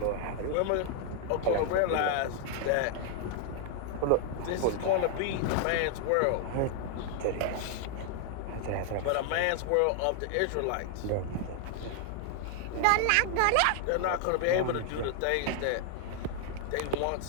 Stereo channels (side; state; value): both; different; correlation 0.00